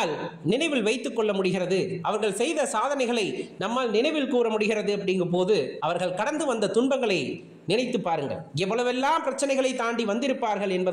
நினைவில் வைத்துக் கொள்ள முடிகிறது. அவர்கள் செய்த சாதனைகளை நம்மால் நினைவில் கூற முடிகிறது. அப்படிங்கும் போது அவர்கள் கடந்து வந்த துன்பங்களை நினைத்து பாருங்கள். எவ்வளவெல்லாம் பிரச்சனைகளை தாண்டி வந்திருப்பார்கள்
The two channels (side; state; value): both; identical; correlation 1.00